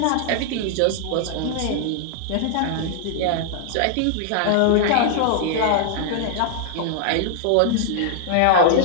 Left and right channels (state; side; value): different; both; correlation -0.01